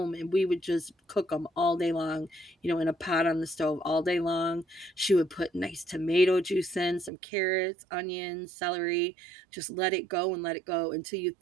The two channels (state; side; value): drops out; left; at 7.1 s